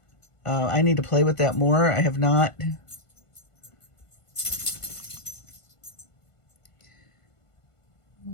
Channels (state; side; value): late; right; 1.5 ms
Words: I need to play with that more. I have not.